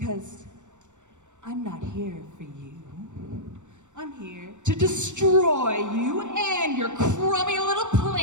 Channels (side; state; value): left; late; 0.84 ms